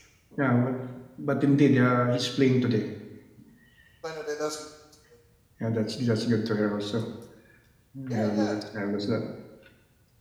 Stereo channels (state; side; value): identical; both; correlation 1.00